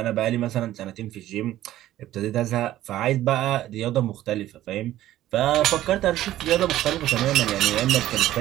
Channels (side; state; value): left; quieter; 13.9 dB